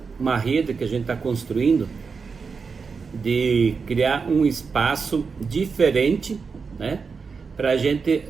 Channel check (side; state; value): left; quieter; 5.2 dB